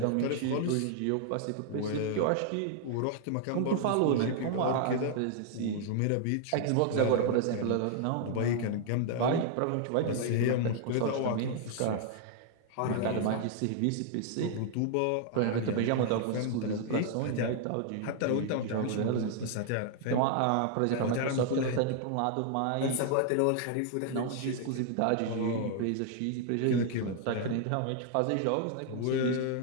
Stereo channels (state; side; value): different; both; correlation 0.00